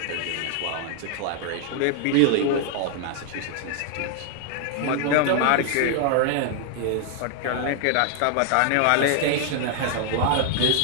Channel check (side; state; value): both; different; correlation 0.00